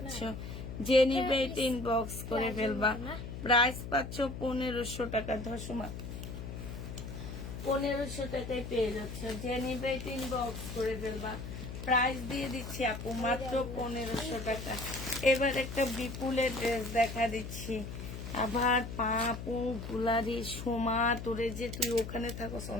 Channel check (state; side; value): noise; left; hum, 8 dB below the sound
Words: যে নিবে এটা ইনবক্স করে ফেলবা। প্রাইস পাচ্ছ 1500 টাকা। ধসমা 1500 টাকায় পেয়ে যাচ্ছ। যে নিবে এটা ইনবক্স করে ফেলবা। প্রাইস দিয়ে দিচ্ছি আপু মাত্র 1500 টাকা। এবার একটা বিপুলের ড্রেস দেখা দিচ্ছি। আবার পাপু গুলারি সোমা, তোরে যে তুই ওখানে থাকস